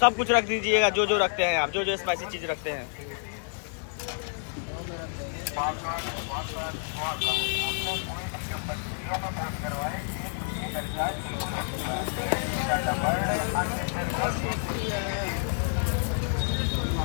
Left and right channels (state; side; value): silent; right; 59 dB below the other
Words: सब कुछ रख दीजिएगा जो जो रखते हैं आप, जो जो स्पाइसी चीज रखते हैं।